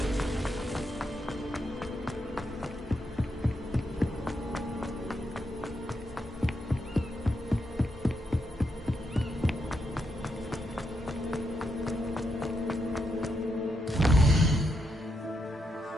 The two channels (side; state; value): both; normal; correlation 0.81